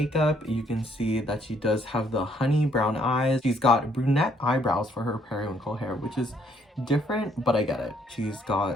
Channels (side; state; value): both; normal; correlation 0.67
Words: you can see that she does have the honey brown eyes. She's got brunette eyebrows for her periwinkle hair, which is different, but I get it. She's